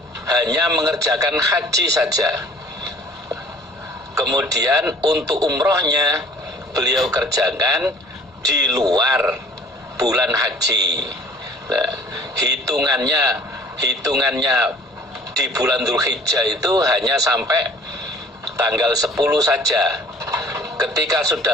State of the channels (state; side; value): normal; both; correlation 0.51